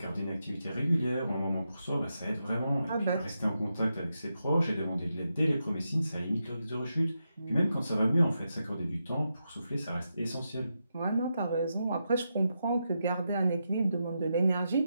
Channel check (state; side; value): inverted; both; correlation -0.86